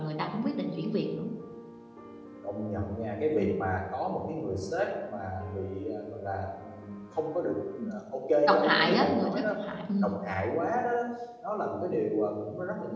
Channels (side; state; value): both; identical; correlation 1.00